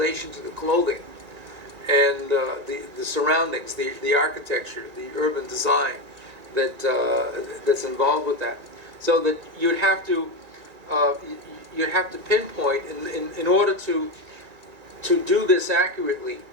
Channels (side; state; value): left; late; 2.3 ms